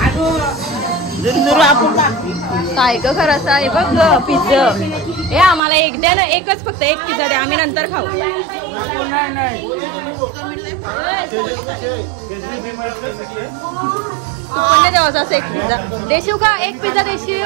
काय ग खरंच आहे बघ ग पिझ्झा. हे आम्हाला एक द्या ना, एकच फक्त एक पिझ्झा द्या, आम्ही नंतर खाऊ. तू पण नाही द्यावं असं एक पिझ्झा देशील का? एक पिझ्झा देशील?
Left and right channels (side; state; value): left; drops out; at 5.6 s